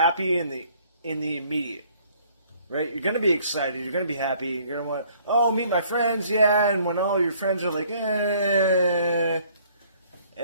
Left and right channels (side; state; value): both; inverted; correlation -0.60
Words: in the immediate, right? You're gonna be excited. You're gonna be happy. You're gonna want, oh, meet my friends, yeah. And when all your friends are like,